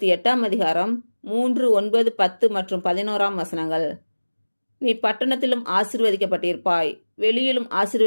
அதிகாரம் 3, 9, 10 மற்றும் 11ஆம் வசனங்கள். நீ பட்டணத்திலும் ஆசீர்வதிக்கப்பட்டிருப்பாய், வெளியிலும்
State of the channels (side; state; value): both; inverted; correlation -1.00